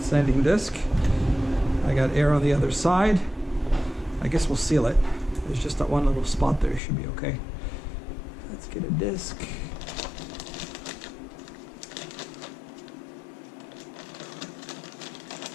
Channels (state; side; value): drops out; right; at 6.8 s